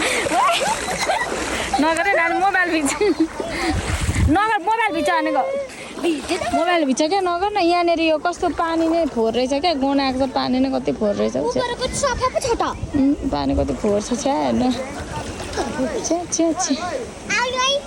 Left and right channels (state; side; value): identical; both; correlation 1.00